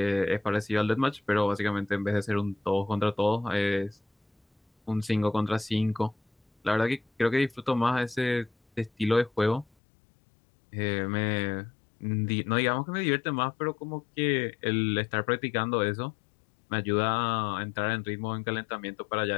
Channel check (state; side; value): drops out; right; at 9.7 s